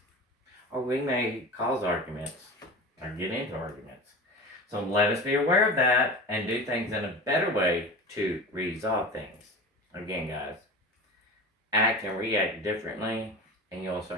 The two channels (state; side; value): normal; both; correlation 0.32